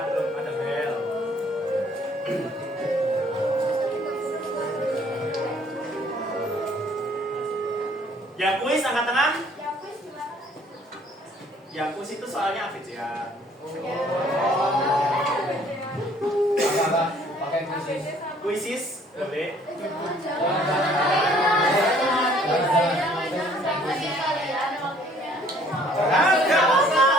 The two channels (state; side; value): normal; both; correlation 0.59